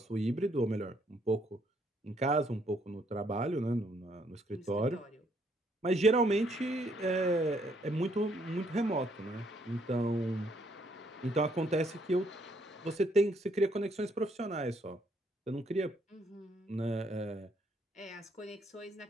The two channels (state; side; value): normal; both; correlation 0.70